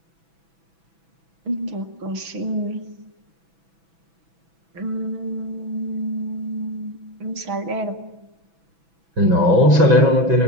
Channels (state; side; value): late; left; 6.1 ms